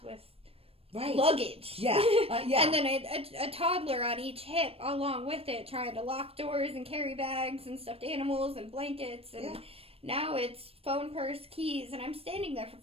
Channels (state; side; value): late; left; 0.28 ms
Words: with luggage. Yeah. Yeah. And then a toddler on each hip along with it, trying to lock doors and carry bags and stuffed animals and blankets. And now it's phone, purse, keys. And I'm standing there for